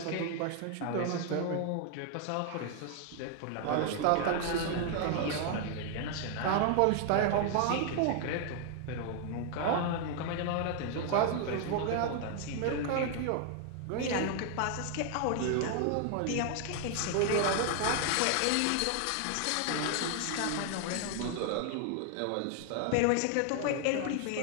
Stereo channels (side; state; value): both; different; correlation 0.00